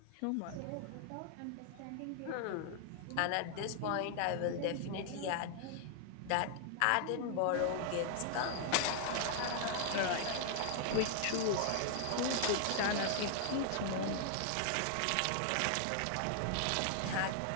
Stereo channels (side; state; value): both; different; correlation 0.00